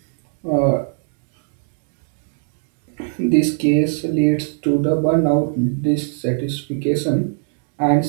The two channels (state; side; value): silent; left; digital silence